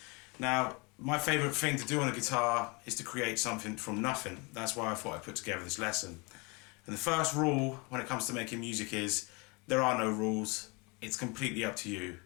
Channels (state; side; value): quieter; right; 28.9 dB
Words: Now, my favourite thing to do on a guitar is to create something from nothing. That's why I thought I'd put together this lesson. And the first rule when it comes to making music is there are no rules. It's completely up to you.